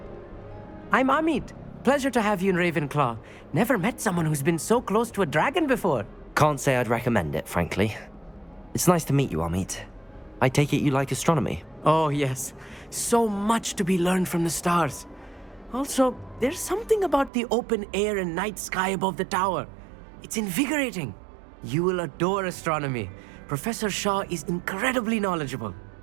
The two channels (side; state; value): left; drops out; at 17.3 s